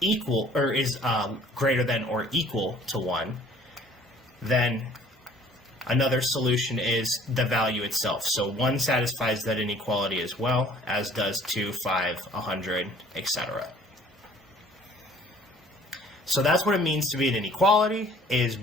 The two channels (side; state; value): both; normal; correlation 0.55